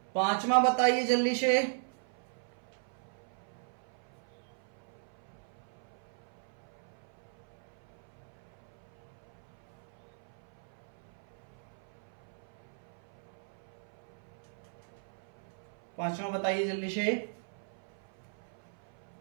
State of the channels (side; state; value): left; silent; 53 dB below the other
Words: पांचवा बताइए जल्दी से। पांचवा बताइए जल्दी से।